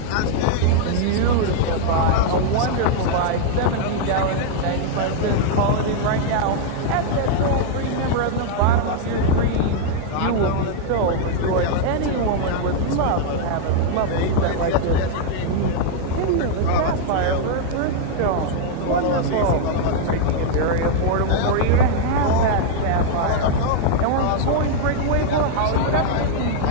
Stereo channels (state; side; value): different; both; correlation 0.00